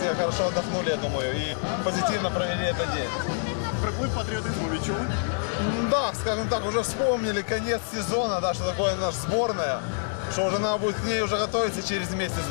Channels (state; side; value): silent; right; digital silence